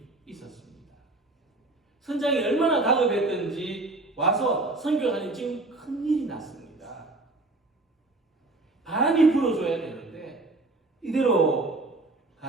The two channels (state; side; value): quieter; left; 3.0 dB